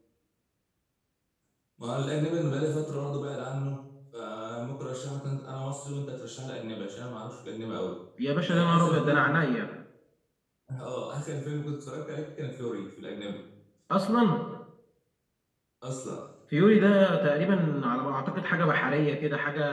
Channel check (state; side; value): identical; both; correlation 1.00